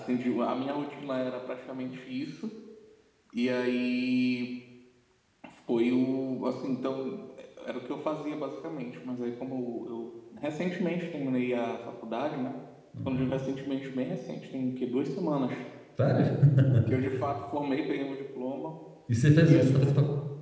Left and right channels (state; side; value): identical; both; correlation 1.00